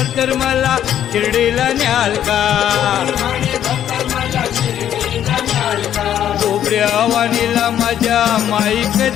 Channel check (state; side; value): quieter; right; 10.5 dB